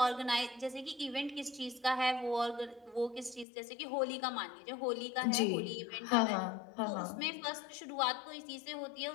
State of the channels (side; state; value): right; drops out; at 3.5 s